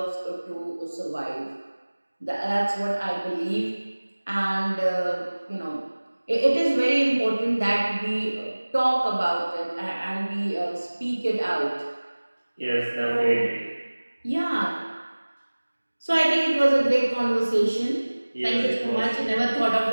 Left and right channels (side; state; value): both; inverted; correlation -1.00